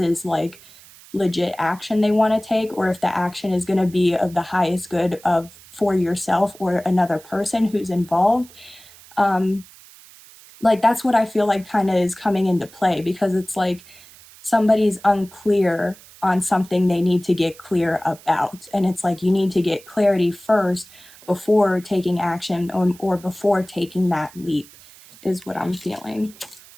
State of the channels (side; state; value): right; noise; hiss, 22 dB below the sound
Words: like legit action they want to take, or if the action is going to be of the highest good of for yourself or another person who's involved, like that's what I feel like kind of is coming into play, because it's like somebody's unclear on something they need to get clear about. And it's like you need to get clarity first before taking action, or before taking that leap, is what I'm feeling.